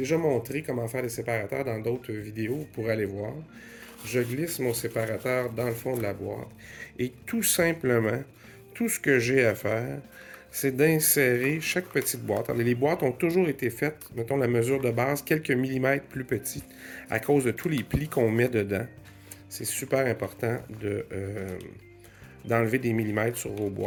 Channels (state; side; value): identical; both; correlation 1.00